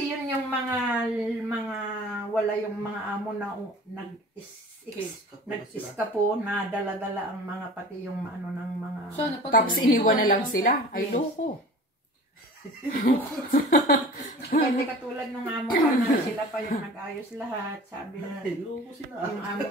yun yung mga wala yung mga amo na nag-iskapo na dala-dala ang mga pati yung ng mga... Tapos iniwan na lang sila? Ay, loko. Hindi katulad ng amo ko na sila pa yung nag-ayos lahat. Sabi na yung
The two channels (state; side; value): normal; both; correlation 0.41